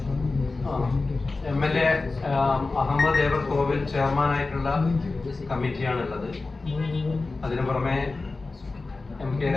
MLA അഹമ്മദ് ദേവർ കോവിൽ ചെയർമാനായിട്ടുള്ള കമ്മിറ്റിയാണുള്ളത്. അതിനു പുറമെ MK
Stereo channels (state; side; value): quieter; right; 3.6 dB